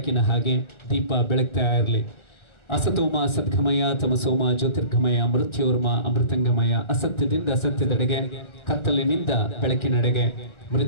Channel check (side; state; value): right; late; 1.4 ms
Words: ಹಾಗೆ ದೀಪ ಬೆಳಗ್ತಾ ಇರಲಿ. ಅಸತೋಮ ಸದ್ಗಮಯ ತಮಸೋಮ ಜ್ಯೋತಿರ್ಗಮಯ ಮೃತ್ಯೋರ್ಮ ಅಮೃತಂಗಮಯ. ಅಸತ್ಯದಿಂದ ಸತ್ಯದೆಡೆಗೆ, ಕತ್ತಲಿನಿಂದ ಬೆಳಕಿನೆಡೆಗೆ,